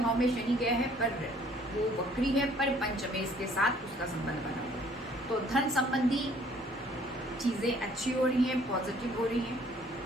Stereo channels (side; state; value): both; normal; correlation 0.59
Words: में शनि गया है, पर वो वक्री है, पर पंचमेश के साथ उसका संबंध बना हुआ है, तो धन संबंधी चीज़ें अच्छी हो रही हैं, पॉजिटिव हो रही हैं,